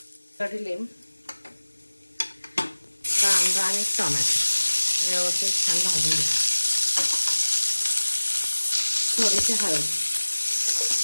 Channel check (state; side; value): inverted; both; correlation -1.00